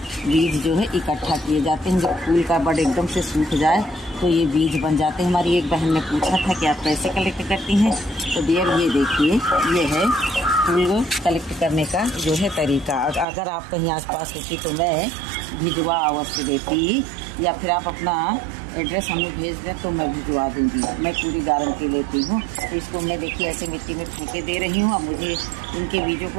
बीज जो है इकट्ठा किए जाते हैं। जब फूल का बड एकदम से सूख जाए तो ये बीज बन जाते हैं। हमारी एक बहन ने पूछा था कि आप कैसे कलेक्ट करती हैं, तो डियर ये देखिए, ये है फूल कलेक्ट करने का जो है तरीका। अगर आप कहीं आसपास होती तो मैं भिजवा अवश्य देती, या फिर आप अपना एड्रेस हमें भेज दें तो मैं भिजवा दूंगी। मैं पूरी गारंटी लेती हूँ। तो इसको मैं देखिए ऐसे मिट्टी में फूके दे रही हूँ। अब मुझे इनके बीजों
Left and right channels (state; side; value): drops out; left; at 13.2 s